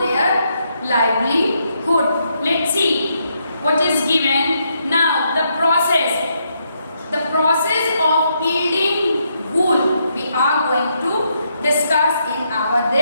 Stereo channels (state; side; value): inverted; both; correlation -0.78